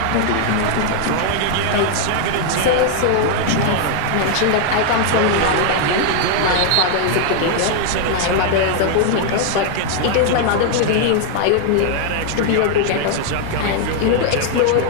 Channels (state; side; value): different; both; correlation 0.00